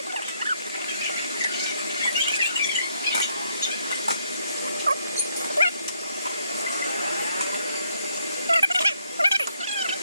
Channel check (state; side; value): inverted; both; correlation -0.72